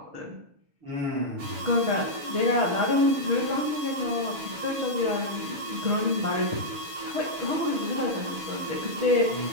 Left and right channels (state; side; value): late; left; 6.9 ms